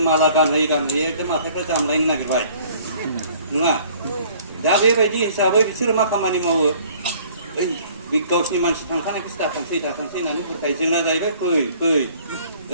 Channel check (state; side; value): inverted; both; correlation -0.55